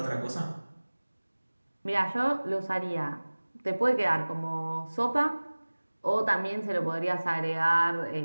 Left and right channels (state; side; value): inverted; both; correlation -1.00